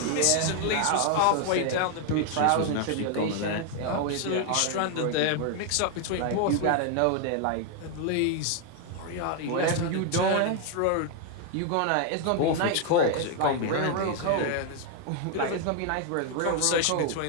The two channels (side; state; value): both; different; correlation 0.00